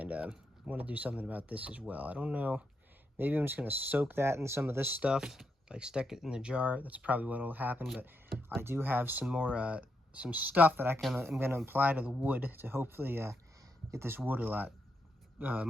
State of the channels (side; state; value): both; normal; correlation 0.82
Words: I want to do something about this as well. I don't know, maybe I'm just gonna soak that in some of this stuff, like stick it in the jar. That's probably what will happen, but I do have some more some stuff that I'm gonna apply to the wood to hopefully get this wood a lot